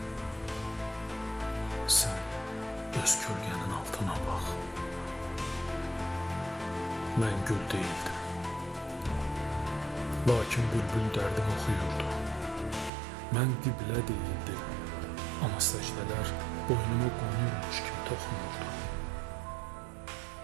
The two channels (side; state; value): left; drops out; at 12.9 s